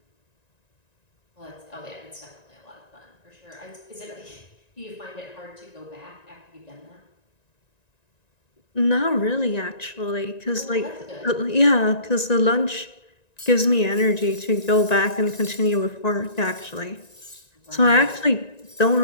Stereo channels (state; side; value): late; right; 1.9 ms